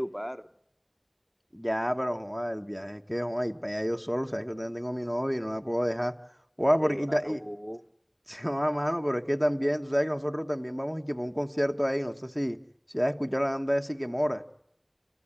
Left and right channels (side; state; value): both; identical; correlation 1.00